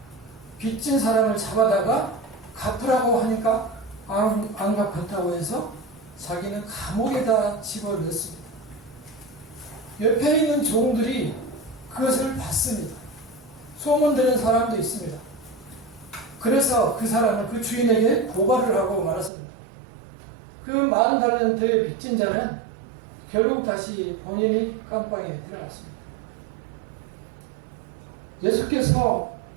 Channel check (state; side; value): drops out; left; at 19.3 s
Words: 빚진 사람을 잡아다가 갚으라고 하니까 안 갚았다고 해서 자기는 감옥에다 집어넣습니다. 옆에 있는 종들이 그것을 봤습니다. 소문 들은 사람도 있습니다. 그래서 그 사람을 그 주인에게 고발을 하고 말았습니다. 그 10,000달란트의 빚진 자는 결국 다시 본인이 감방에 들어갔습니다. 예수께서